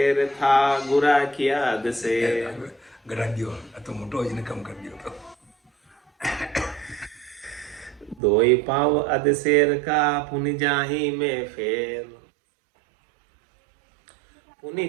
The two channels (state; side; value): drops out; left; at 8.2 s